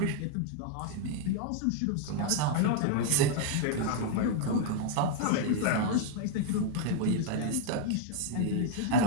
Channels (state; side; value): different; both; correlation 0.00